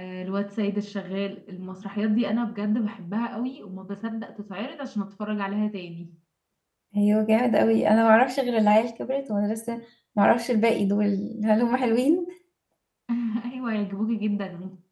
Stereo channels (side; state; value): both; identical; correlation 1.00